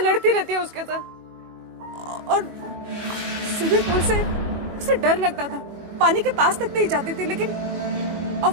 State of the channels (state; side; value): late; left; 21 ms